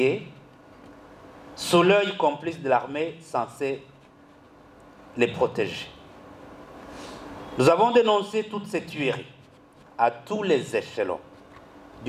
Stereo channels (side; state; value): both; identical; correlation 1.00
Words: sous l'œil complice de l'armée censée les protéger. Nous avons dénoncé toutes ces tueries à tous les échelons